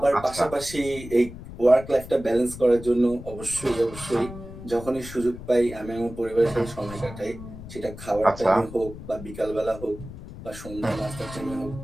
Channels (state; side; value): noise; left; rumble, 13 dB below the sound